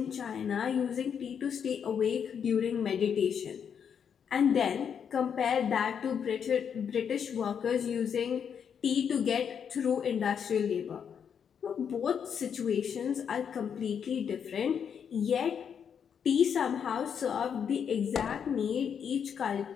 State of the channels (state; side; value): quieter; right; 7.6 dB